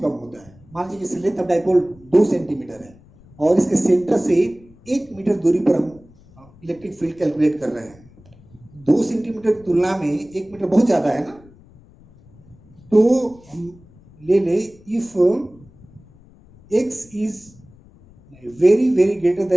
कम होता है, मान लीजिए जैसे लेंथ ऑफ डाइपोल 2 सेंटीमीटर है और इसके सेंटर से 1 मीटर दूरी पर हम इलेक्ट्रिक फील्ड कैलकुलेट कर रहे हैं, 2 सेंटीमीटर की तुलना में 1 मीटर बहुत ज्यादा है ना। तो हम ले ले if x is very very greater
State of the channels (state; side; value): noise; left; rumble, 26 dB below the sound